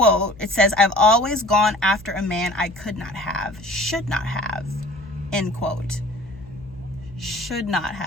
it says, "I've always gone after a man I could not have, should not have," end quote. Should not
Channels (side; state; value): left; noise; hum, 21 dB below the sound